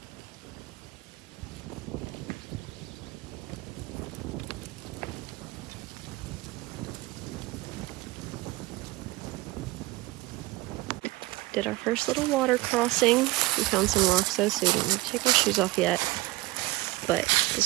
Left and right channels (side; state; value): left; quieter; 20.1 dB